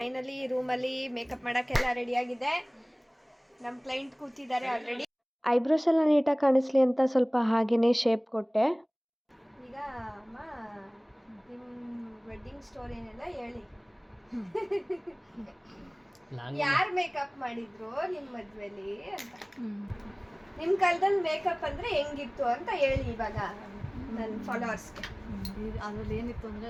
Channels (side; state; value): both; identical; correlation 1.00